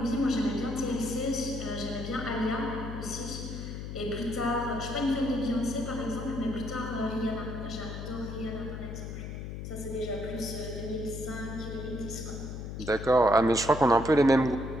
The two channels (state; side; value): noise; left; hum, 7 dB below the sound